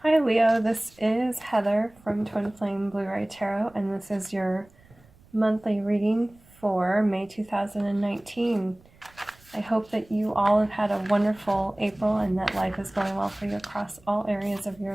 Hi Leo, this is Heather from Twin Flame Blue-Ray Tarot, and this is your monthly reading for May 2019. I hope that you all have had a wonderful April and that life is going well for you across all areas of your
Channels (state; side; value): noise; right; rumble, 28 dB below the sound